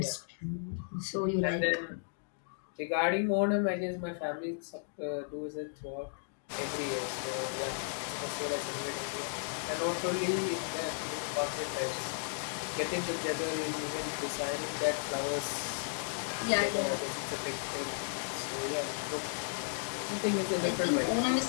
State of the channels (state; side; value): silent; right; digital silence